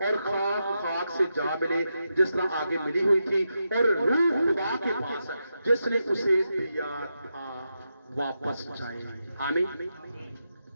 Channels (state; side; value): inverted; both; correlation -0.86